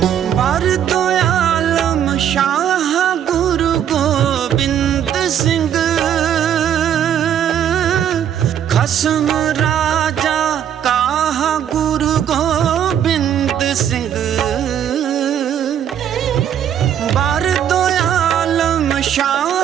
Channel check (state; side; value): quieter; left; 9.5 dB